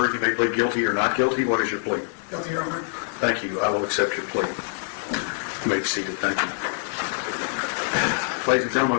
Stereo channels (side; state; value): right; silent; digital silence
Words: you may plead guilty or not guilty. What is your plea? Guilty, Your Honor. Thank you. I will accept your plea. You may be seated. Thank you. Ladies and